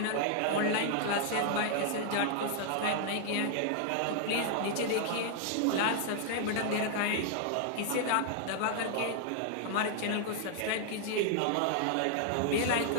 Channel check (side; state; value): both; different; correlation -0.01